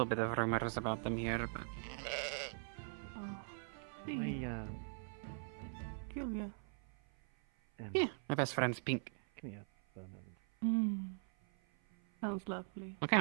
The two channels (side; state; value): left; silent; 50 dB below the other